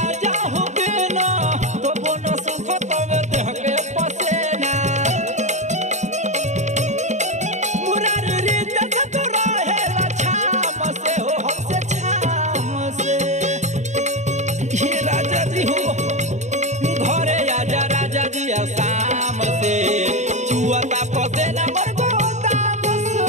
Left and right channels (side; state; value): left; late; 0.34 ms